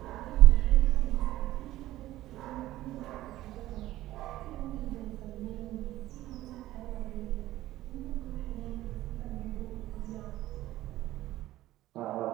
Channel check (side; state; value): left; quieter; 15.4 dB